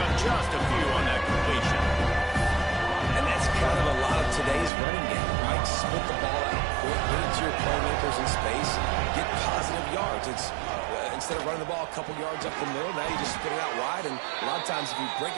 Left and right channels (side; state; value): left; drops out; at 4.7 s